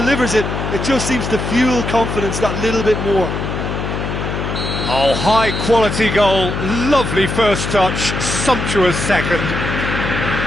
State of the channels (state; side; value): noise; left; hum, 4 dB below the sound